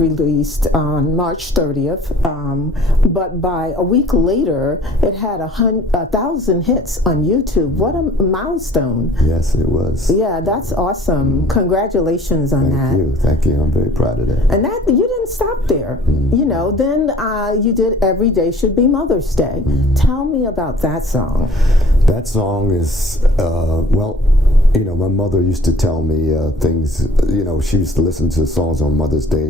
on March 30th, but by a week later, it had 1,000 hits on YouTube. What a milestone. Yes, it was. Yeah, that's awesome. Congratulations on that. Thank you. I'm very proud of that. And that you didn't stop there. You know, then you did Every Day Should Be Mother's Day. Tell me about that song. That song is, well, you know, my mother used to tell me things, you know, she used to listen to songs on Mother's Day,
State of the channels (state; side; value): normal; both; correlation 0.50